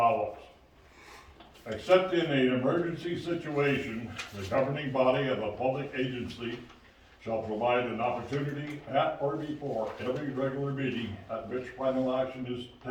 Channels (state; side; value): identical; both; correlation 1.00